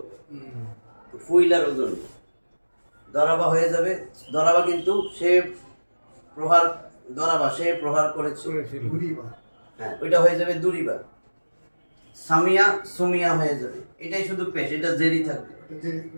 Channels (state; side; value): inverted; both; correlation -1.00